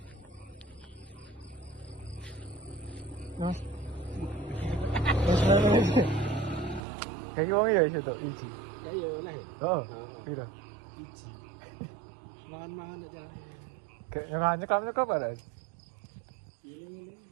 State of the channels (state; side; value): drops out; left; at 6.8 s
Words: Mas. Kayak wong ya itu iji. Ya ya oleh. Oh, piro? Iji. Mangan-mangan aja. Kayak nanya kamu kok ada?